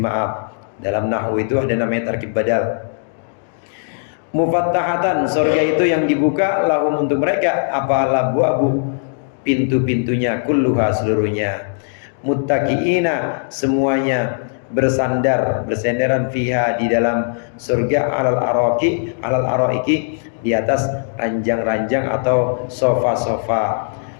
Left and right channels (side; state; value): right; silent; digital silence